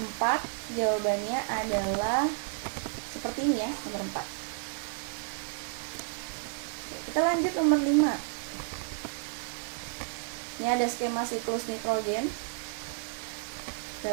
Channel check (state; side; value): silent; left; digital silence